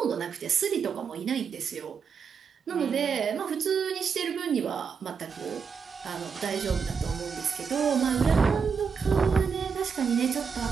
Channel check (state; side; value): quieter; left; 6.1 dB